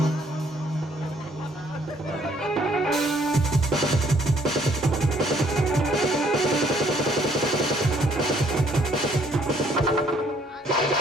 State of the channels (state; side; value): normal; both; correlation 0.64